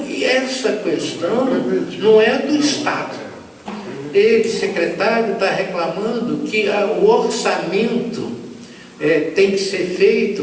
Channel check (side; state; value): both; identical; correlation 1.00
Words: essa questão não é do Estado. Ele, secretário, está reclamando que o orçamento tem que ser